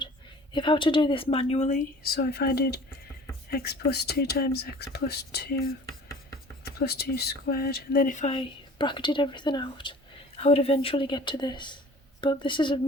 If I were to do this manually, so if I did x plus 2 times x plus 2, x plus 2 squared, and then if I bracketed everything out, I would eventually get to this. But this is a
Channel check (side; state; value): both; normal; correlation 0.46